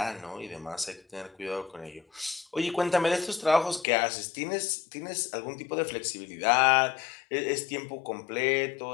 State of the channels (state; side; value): drops out; right; at 3.9 s